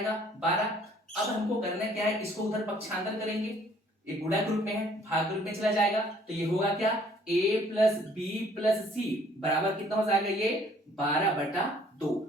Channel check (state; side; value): normal; both; correlation 0.59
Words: 12। अब हमको करना क्या है? इसको उधर पक्षांतर करेंगे। ये गुणा के रूप में है, भाग के रूप में चला जाएगा। तो ये होगा क्या? a प्लस बी प्लस सी बराबर कितना हो जाएगा? ये 12/2